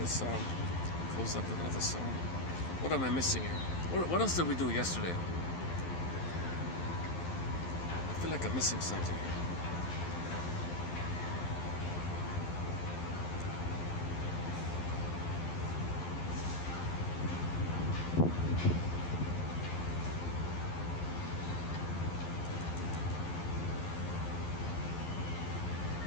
close up with another song. What am I missing here? What else did we do yesterday? I feel like I'm missing something here.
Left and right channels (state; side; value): late; right; 12 ms